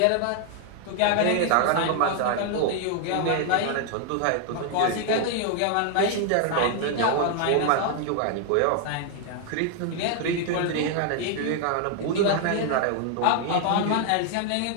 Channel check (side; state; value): both; different; correlation 0.00